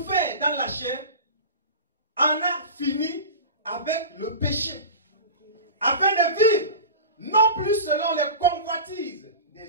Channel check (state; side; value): inverted; both; correlation -0.31